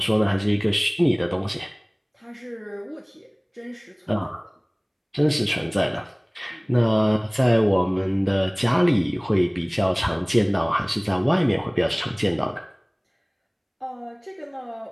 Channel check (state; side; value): identical; both; correlation 1.00